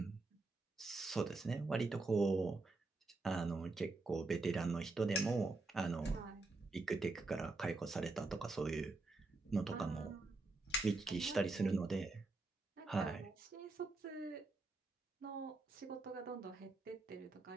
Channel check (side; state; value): left; quieter; 3.4 dB